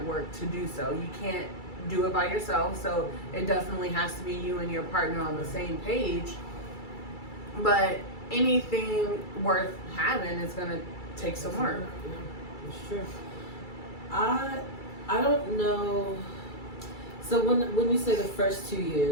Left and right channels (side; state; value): right; late; 2.3 ms